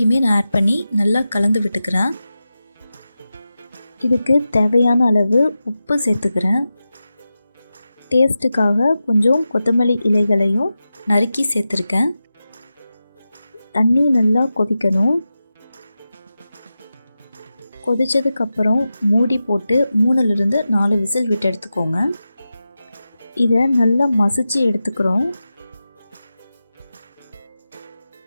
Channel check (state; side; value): inverted; both; correlation -0.92